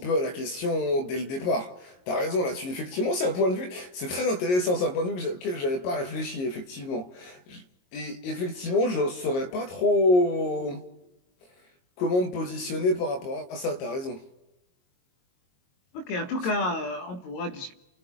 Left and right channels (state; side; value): late; right; 22 ms